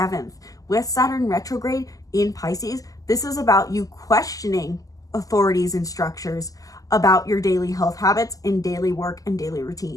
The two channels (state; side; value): late; right; 0.17 ms